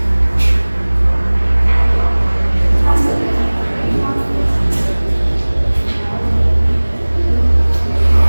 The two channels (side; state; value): both; inverted; correlation -1.00